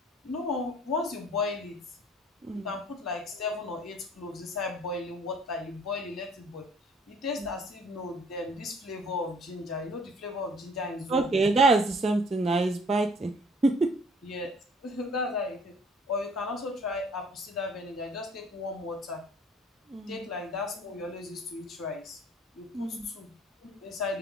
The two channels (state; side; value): normal; both; correlation 0.56